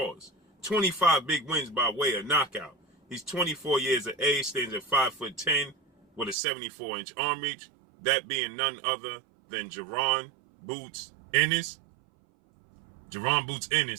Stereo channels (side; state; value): left; drops out; at 6.4 s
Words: 25 big wins by way of knockout. He's 24 years of age, stands at 5'10", with a 74-inch arm reach, that being none other than Jarron Boots Ennis. Jarron Boots